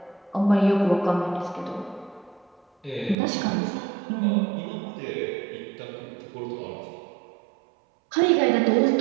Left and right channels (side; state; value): left; drops out; at 3.2 s